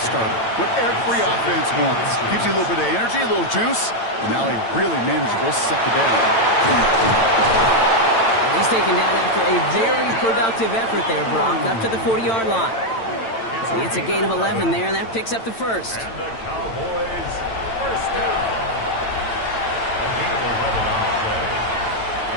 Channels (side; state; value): right; late; 8.9 ms